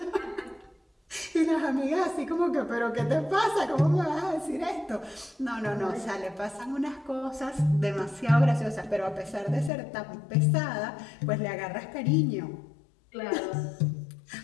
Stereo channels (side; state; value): right; drops out; at 9.7 s